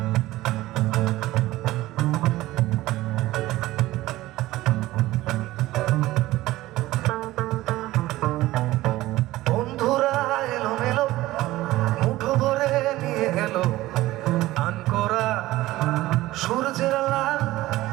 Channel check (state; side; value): quieter; left; 17.0 dB